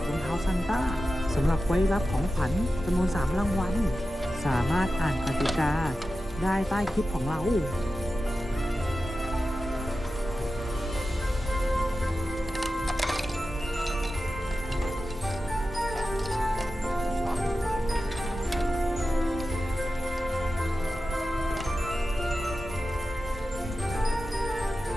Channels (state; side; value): normal; both; correlation 0.93